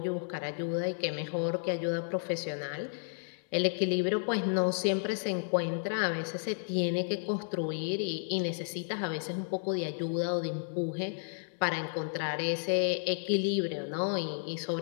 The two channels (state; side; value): silent; right; 56 dB below the other